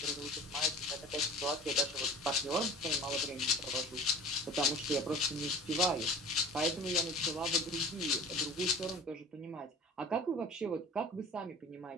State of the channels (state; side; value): normal; both; correlation 0.41